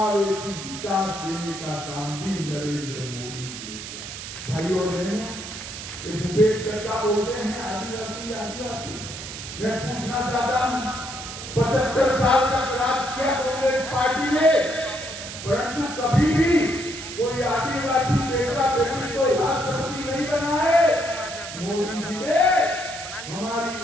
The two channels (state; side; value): noise; right; hiss, 10 dB below the sound